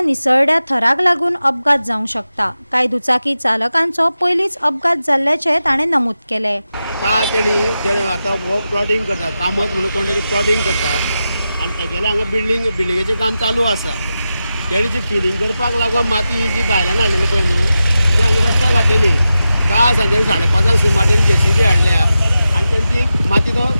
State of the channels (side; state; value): both; inverted; correlation -0.91